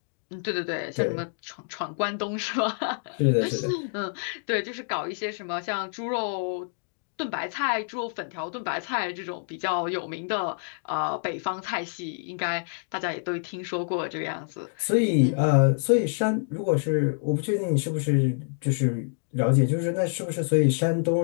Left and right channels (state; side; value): silent; right; digital silence